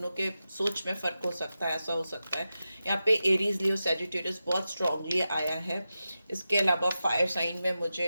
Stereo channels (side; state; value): both; inverted; correlation -0.91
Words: के सोच में फर्क हो सकता है, ऐसा हो सकता है। यहाँ पे एरीज, लियो, सैजिटेरियस बहुत स्ट्रांगली आया है। इसके अलावा फायर साइन में